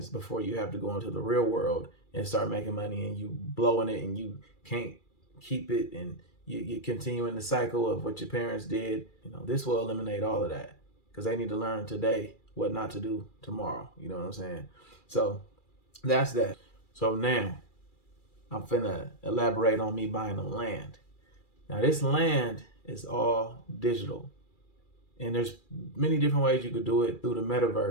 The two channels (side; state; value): right; late; 2.3 ms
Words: before you have to go into the real world and start making money and you blowing it and you can't keep it and you continue in the cycle of what your parents did. You know, this will eliminate all of that because they need to learn today what not to do tomorrow. You know what I'm saying? So that's that. So now I'm finna elaborate on me buying them land. Now this land is all digital. And there's many different ways you could do it through the